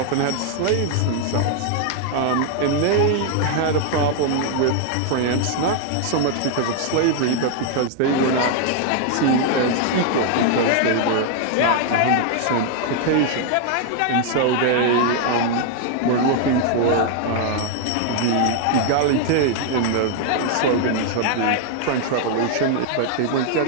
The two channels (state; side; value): different; both; correlation 0.00